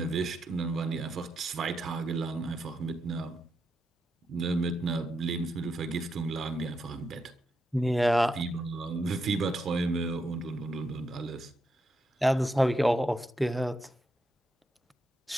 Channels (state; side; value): normal; both; correlation 0.83